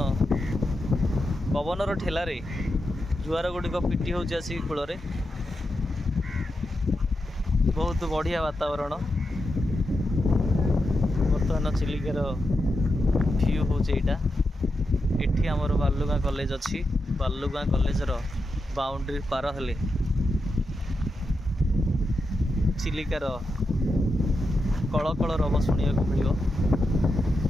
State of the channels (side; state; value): both; normal; correlation 0.87